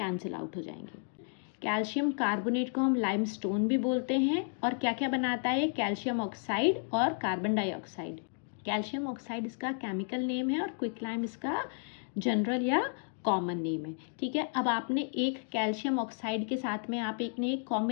आउट हो जाएंगे। कैल्शियम कार्बोनेट को हम लाइमस्टोन भी बोलते हैं और क्या क्या बनाता है, कैल्शियम ऑक्साइड और कार्बन डाइऑक्साइड। कैल्शियम ऑक्साइड इसका केमिकल नेम है और क्विक लाइम इसका जनरल या कॉमन नेम है। ठीक है, अब आपने एक कैल्शियम ऑक्साइड के साथ में आप एक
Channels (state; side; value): silent; right; 56 dB below the other